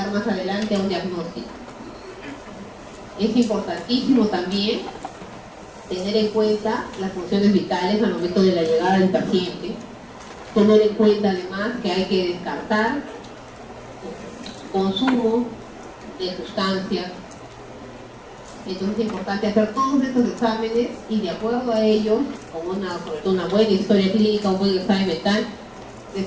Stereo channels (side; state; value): both; identical; correlation 1.00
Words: más adelante a un diagnóstico. Es importantísimo también tener en cuenta las funciones vitales al momento de la llegada del paciente, tener en cuenta además que hay que descartar consumo de sustancias. Entonces es importante hacer todos estos exámenes y de acuerdo a ellos, con sobre todo una buena historia clínica, un buen examen mental,